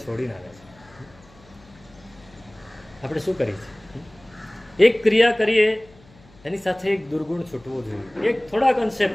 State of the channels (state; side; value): noise; left; hum, 26 dB below the sound